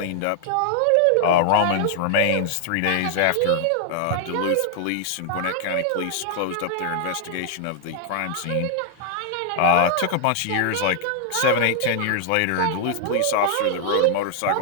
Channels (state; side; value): different; both; correlation 0.00